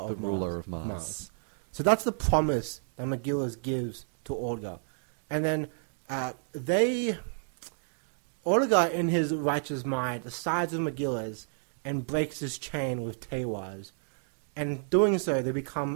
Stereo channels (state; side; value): silent; left; digital silence